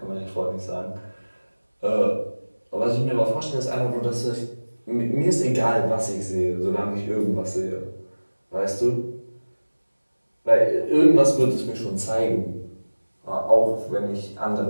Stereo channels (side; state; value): both; inverted; correlation -1.00